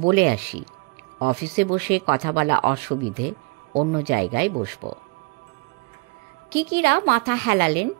আসি। অফিসে বসে কথা বলা অসুবিধে, অন্য জায়গায় বসব। কিকিরা মাথা হেলালেন।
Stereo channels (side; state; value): left; quieter; 27.6 dB